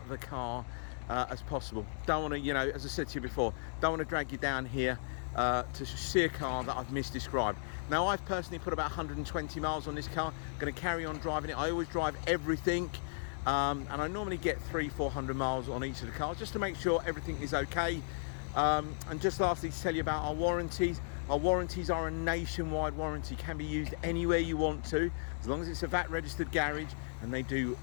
the car as possible. Don't want to, you know, as I said to you before, don't want to drag you down here to see a car that I've misdescribed. Now, I've personally put about 120 miles on this car. I'm going to carry on driving it. I always drive everything, and I normally get 300-400 miles on each of the cars just to make sure everything is okay. And just lastly, to tell you about our warranties. Our warranties are a nationwide warranty, can be used anywhere you want to, as long as it's a VAT registered garage and they do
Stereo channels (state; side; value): silent; right; digital silence